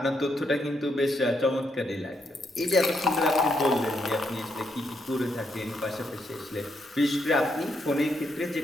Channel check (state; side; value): normal; both; correlation 0.78